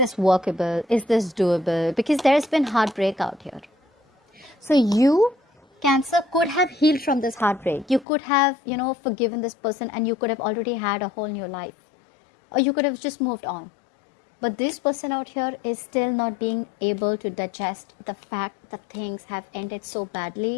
workable? Is this doable? Because there's been heartbreak out here. So you, Cancer, could have healed from this heartbreak. You could have, you know, forgiven this person, and you could have already had a whole new life. Or you could have just moved on. But this person out here is still not being able to digest the fact that things have ended so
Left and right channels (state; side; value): drops out; right; at 8.1 s